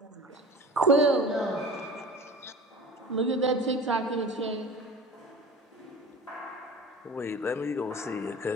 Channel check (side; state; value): both; normal; correlation 0.38